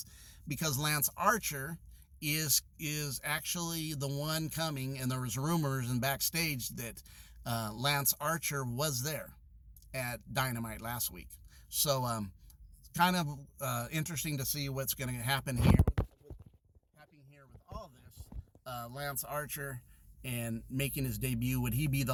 because Lance Archer is actually the one coming, and there was rumors and backstage that Lance Archer was there at Dynamite last week. So kind of interesting to see what's going to happen here with all this. Lance Archer and making his debut, would he be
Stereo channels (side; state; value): both; identical; correlation 1.00